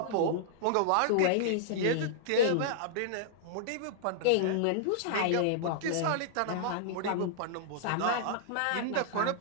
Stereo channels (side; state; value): both; different; correlation -0.01